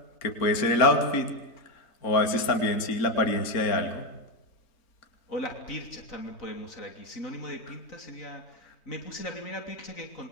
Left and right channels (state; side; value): late; right; 4.3 ms